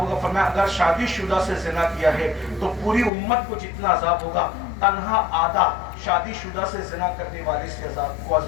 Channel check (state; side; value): drops out; right; at 3.1 s